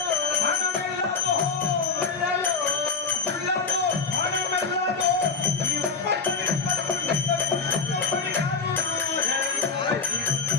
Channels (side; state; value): right; quieter; 5.0 dB